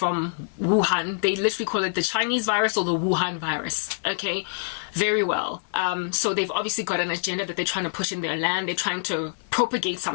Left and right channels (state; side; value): silent; right; digital silence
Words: Wuhan. They literally call it the Chinese virus or the Wuhan virus. Okay, very well. So they've obviously got an agenda that they're trying to push in their land. They're trying to propagate